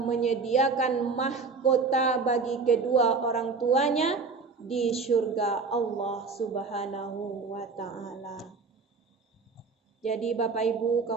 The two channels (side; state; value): left; quieter; 4.5 dB